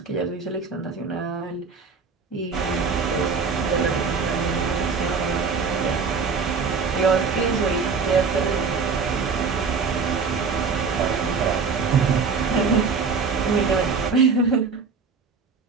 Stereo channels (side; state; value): left; quieter; 5.1 dB